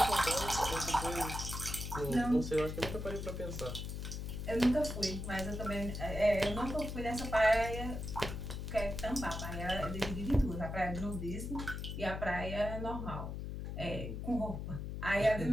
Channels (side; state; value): left; noise; hum, 5 dB below the sound